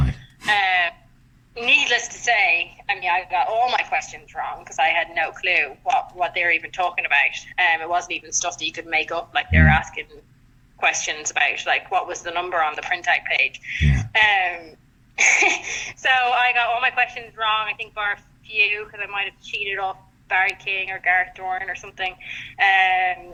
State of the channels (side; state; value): both; identical; correlation 1.00